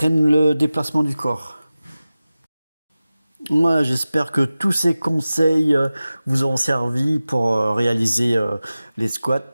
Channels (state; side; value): inverted; both; correlation -0.96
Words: le déplacement du corps. Moi, j'espère que tous ces conseils vous ont servi pour réaliser les squats.